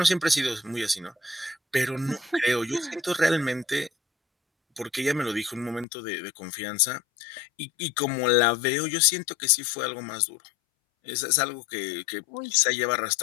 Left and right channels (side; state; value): right; drops out; at 5.9 s